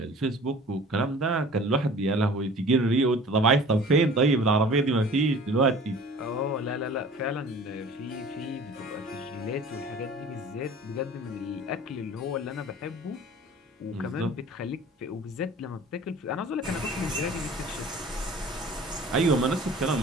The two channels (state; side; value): normal; both; correlation 0.45